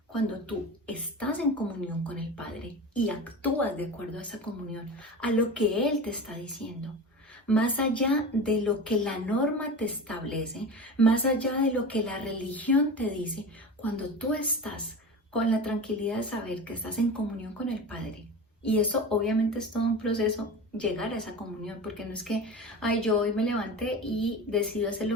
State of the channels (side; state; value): both; normal; correlation 0.30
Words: Cuando tú estás en comunión con el Padre y actúas de acuerdo a esa comunión, a lo que Él te está diciendo, más allá de lo que la norma te establece, más allá de lo que la religión te dice, cuando tú estás con la tranquilidad de saber que estás en comunión con el Padre, y eso obviamente es todo un proceso llegar a esa comunión, porque no es que, ay, yo hoy me levanté y decido hacer